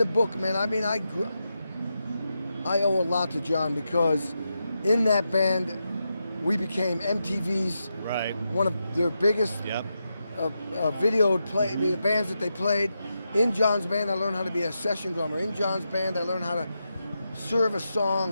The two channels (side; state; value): both; inverted; correlation -0.87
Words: book, man, I owe a lot to John because in that band, we became MTV's one of their biggest videoed bands that they played. In John's band, I learned how to be a session drummer. In John's band, I learned how to serve a